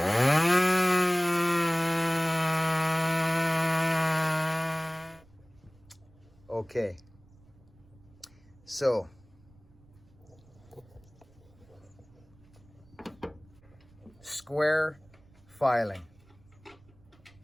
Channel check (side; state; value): right; noise; rumble, 27 dB below the sound